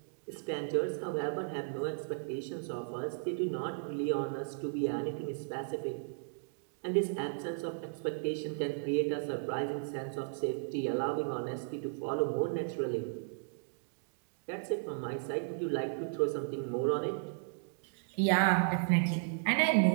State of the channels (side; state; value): left; silent; digital silence